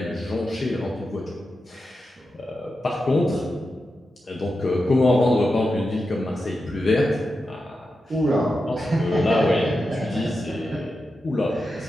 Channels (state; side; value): normal; both; correlation 0.89